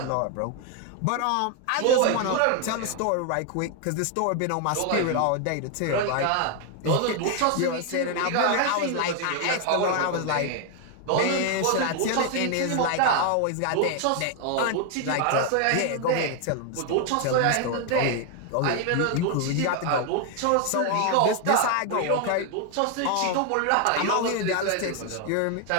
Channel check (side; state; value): both; different; correlation 0.01